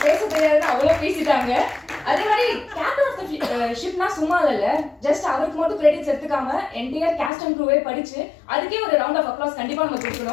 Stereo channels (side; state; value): right; drops out; at 7.3 s